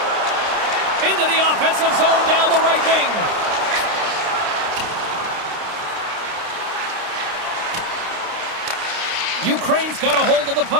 Into the offensive zone down the right wing. Ukraine's got a hold of the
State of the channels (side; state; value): left; late; 29 ms